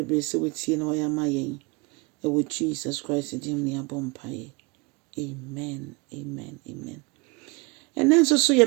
sɛ wotie na wɔyɛ ama yɛn. Ɛwɔ Jesus Christ din mu yɛabɔ mpaeɛ. Amen, amen, amen. Ɛnɛ nso so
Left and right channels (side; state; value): left; quieter; 27.8 dB